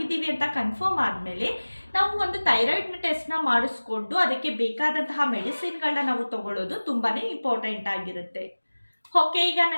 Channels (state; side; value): inverted; both; correlation -1.00